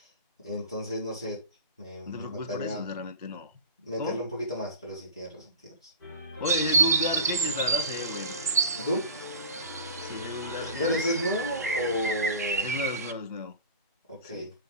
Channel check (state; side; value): inverted; both; correlation -0.36